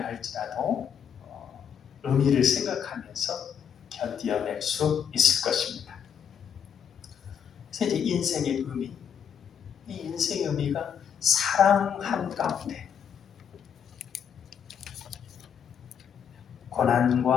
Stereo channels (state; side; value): quieter; right; 8.0 dB